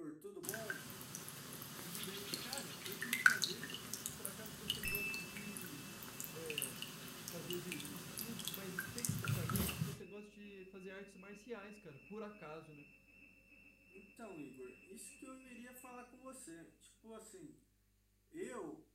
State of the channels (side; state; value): both; identical; correlation 1.00